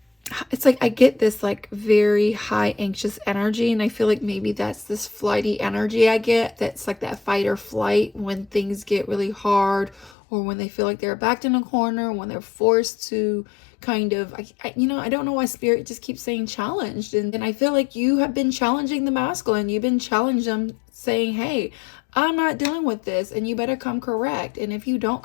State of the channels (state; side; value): drops out; right; at 10.1 s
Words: like I get this like very high anxious energy, and I feel like maybe that's this flighty energy I get. That's like that fight or flight when things get really hard, or when they feel like they're backed in a corner, when they're forced to kind of, I don't know why Spirit just keeps saying challenged. And I feel like you have been challenging the masculine. You've been challenging them, saying, hey, I'm not dealing with this, and you better come correct. And if you don't